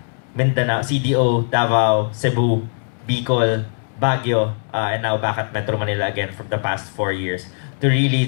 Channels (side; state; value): right; silent; digital silence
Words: Mindanao, CDO, Davao, Cebu, Bicol, Baguio, and now back at Metro Manila again from the past 4 years to really